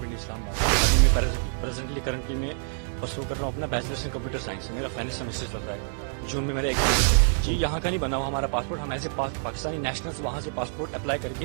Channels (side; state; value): left; silent; digital silence